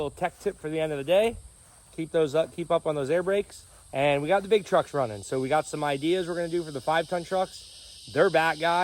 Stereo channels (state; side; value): identical; both; correlation 1.00